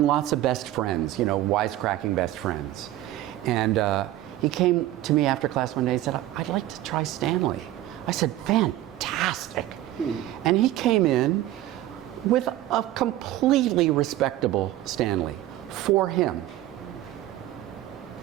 lots of best friends, you know, wisecracking best friends. And he came to me after class one day and said, I'd like to try Stanley. I said, fantastic. And he came in with a completely respectable Stanley for him.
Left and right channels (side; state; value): left; quieter; 14.5 dB